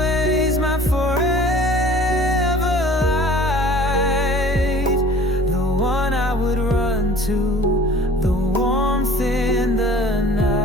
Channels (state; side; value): normal; both; correlation 0.48